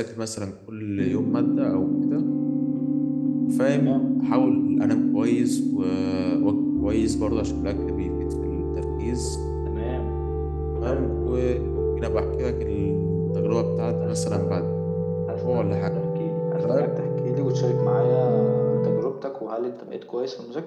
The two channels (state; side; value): identical; both; correlation 1.00